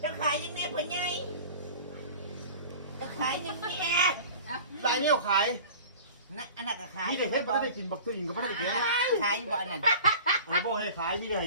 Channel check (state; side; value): inverted; both; correlation -0.40